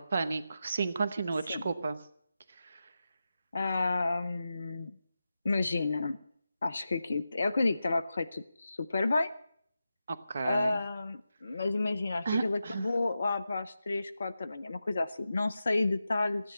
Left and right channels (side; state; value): both; inverted; correlation -0.90